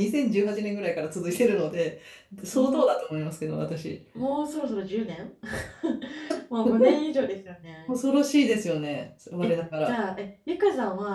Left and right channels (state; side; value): identical; both; correlation 1.00